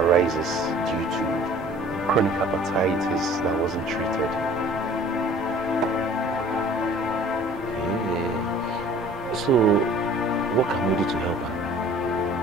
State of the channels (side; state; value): both; normal; correlation 0.50